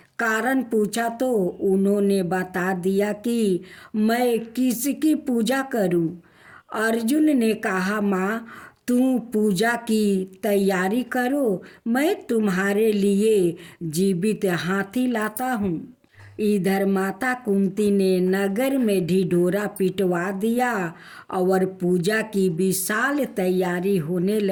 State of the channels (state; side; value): identical; both; correlation 1.00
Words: कारण पूछा तो उन्होंने बता दिया कि मैं किसकी पूजा करूं। अर्जुन ने कहा, माँ तू पूजा की तैयारी करो, मैं तुम्हारे लिए जीवित हाथी लाता हूँ। इधर माता कुंती ने नगर में ढिढोरा पिटवा दिया और पूजा की विशाल तैयारी होने